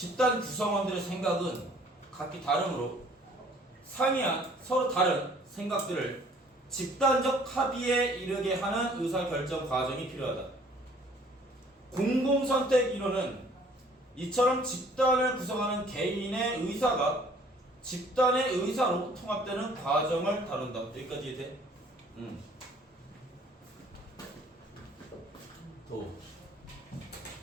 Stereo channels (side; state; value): both; normal; correlation 0.56